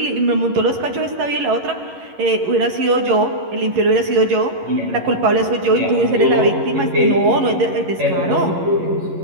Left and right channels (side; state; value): left; late; 11 ms